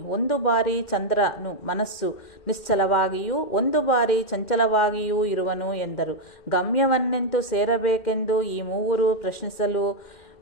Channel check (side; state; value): right; late; 2.1 ms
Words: ಒಂದು ಬಾರಿ ಚಂದ್ರನು ಮನಸ್ಸು ನಿಶ್ಚಲವಾಗಿಯೂ ಒಂದು ಬಾರಿ ಚಂಚಲವಾಗಿಯೂ ಇರುವನು ಎಂದರು. ಗಮ್ಯವನ್ನೆಂತು ಸೇರಬೇಕೆಂದು ಈ ಮೂವರು ಪ್ರಶ್ನಿಸಲು,